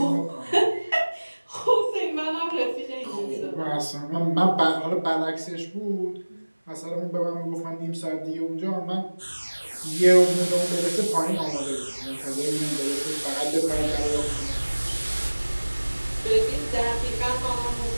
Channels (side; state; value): both; inverted; correlation -1.00